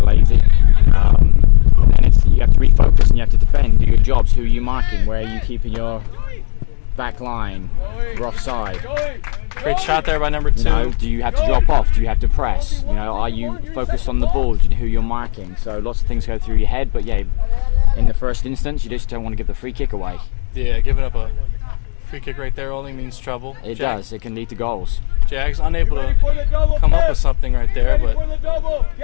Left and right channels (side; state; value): right; quieter; 39.3 dB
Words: And then you have to refocus and you have to defend, do your jobs. Who are you marking? Where are you keeping your back line? You're offside. Great shot there by number 2. You know, do you have to drop off? Do you have to press? You know, are you focused on the ball? Do you know who you're marking? So lots of things go through your head, but yeah, in the first instance, you just don't want to give the free kick away. Yeah, giving up a free kick right there only means trouble. It does. It can lead to goals. Jags unable to come up with something right there, but